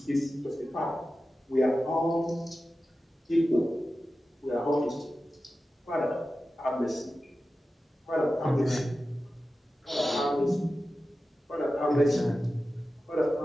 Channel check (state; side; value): normal; both; correlation 0.93